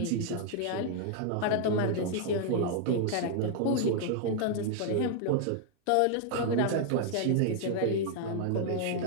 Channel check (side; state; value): both; different; correlation 0.00